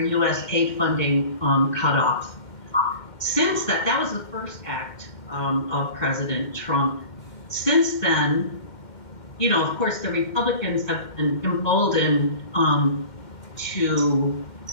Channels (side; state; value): right; late; 2.1 ms